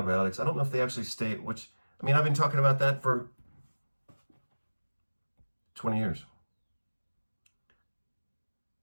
I don't know if they actually state which. I've been talking about that for 20 years.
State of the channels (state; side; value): inverted; both; correlation -1.00